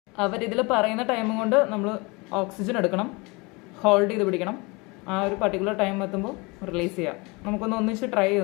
അവരിതിൽ പറയുന്ന ടൈം കൊണ്ട് നമ്മൾ ഓക്സിജൻ എടുക്കണം, ഹോൾഡ് ചെയ്ത് പിടിക്കണം. ആ ഒരു പർട്ടിക്കുലർ ടൈം എത്തുമ്പോൾ റിലീസ് ചെയ്യാം. നമുക്കൊന്ന് ഒന്നിച്ച് ട്രൈ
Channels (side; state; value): right; quieter; 26.8 dB